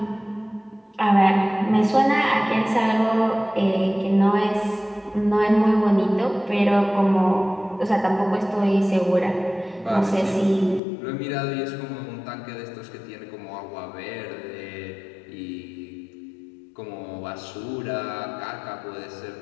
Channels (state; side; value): drops out; right; at 10.8 s